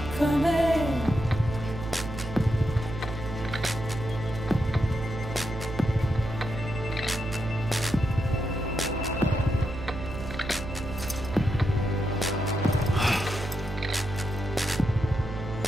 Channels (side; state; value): right; noise; hum, 8 dB below the sound